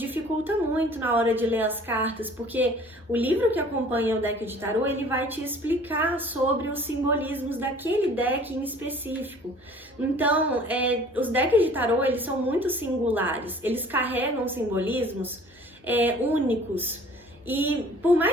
muito na hora de ler as cartas, porque o livro que acompanha o deck de tarô, ele vai te explicar sobre os simbolismos daquele deck em específico. Então, os decks de tarô, eles são muito singulares, eles carregam simbolismos únicos. E por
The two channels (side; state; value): both; normal; correlation 0.50